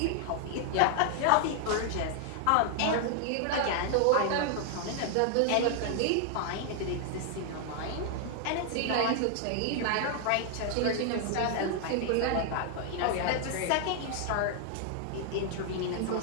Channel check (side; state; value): both; different; correlation 0.00